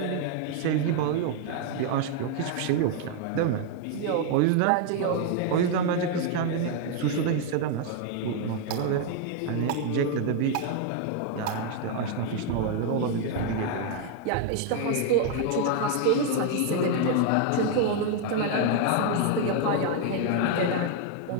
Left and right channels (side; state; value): both; different; correlation 0.00